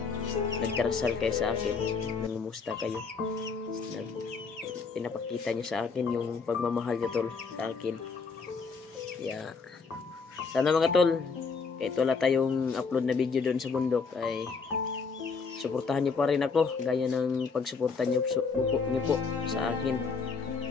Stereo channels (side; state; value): right; quieter; 4.9 dB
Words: nagdarasal kayo sa akin, nangumusta kayo, pinapakita nyo sa akin yung pagmamahal nyo tol sa akin. Sana mga tol, kahit wala tayong upload na video doon sa bundok ay suportahan nyo pa rin ako gaya ng pagsuporta nyo po sa akin.